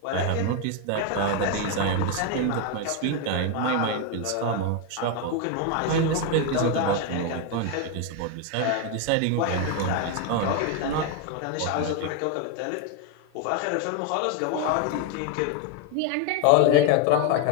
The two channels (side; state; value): both; different; correlation 0.01